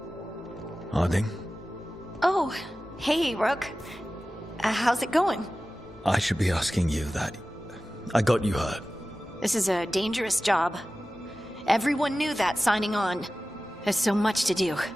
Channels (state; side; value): normal; both; correlation 0.96